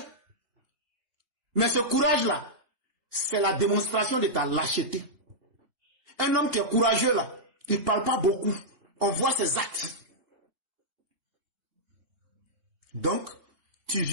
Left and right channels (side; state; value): left; late; 2.8 ms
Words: Mais ce courage-là, c'est la démonstration de ta lâcheté. Un homme qui est courageux là, il ne parle pas beaucoup. On voit ses actes. Donc, tu